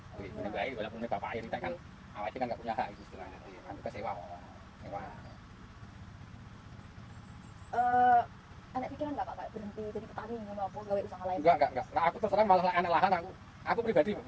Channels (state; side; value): identical; both; correlation 1.00